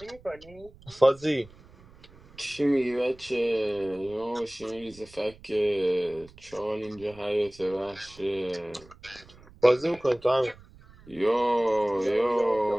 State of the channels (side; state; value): right; noise; rumble, 23 dB below the sound